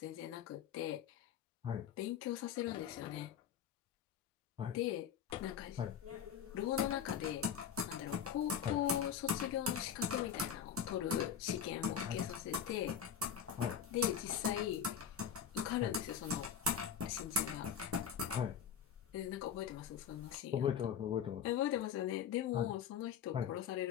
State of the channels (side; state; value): right; quieter; 8.0 dB